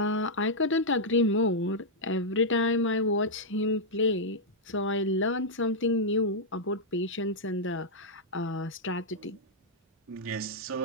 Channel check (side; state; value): both; normal; correlation -0.06